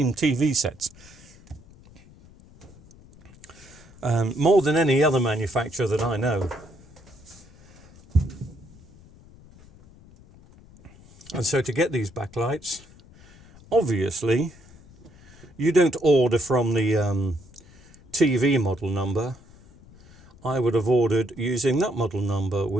TV sets. More than any other manufacturer that I know. And so to get these backlights, obviously, you don't order from the TV model number. I would have ordered using that model number,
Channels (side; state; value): left; noise; rumble, 23 dB below the sound